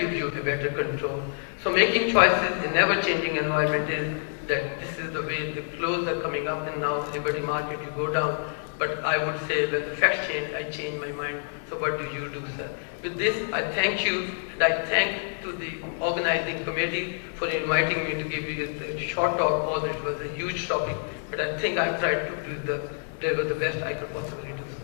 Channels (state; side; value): silent; right; 59 dB below the other